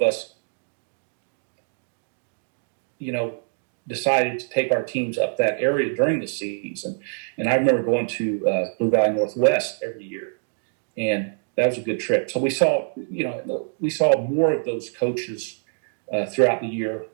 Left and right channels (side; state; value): left; silent; digital silence